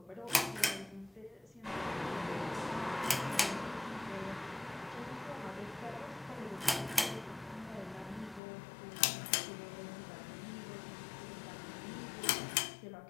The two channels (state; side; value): drops out; right; at 8.4 s